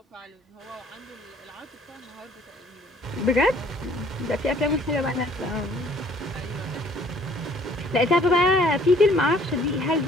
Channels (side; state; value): both; normal; correlation 0.58